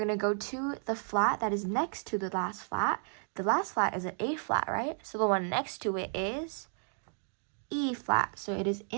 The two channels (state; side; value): silent; left; 56 dB below the other